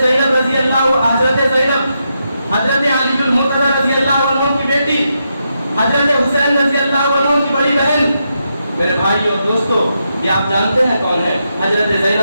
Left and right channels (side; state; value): both; inverted; correlation -0.83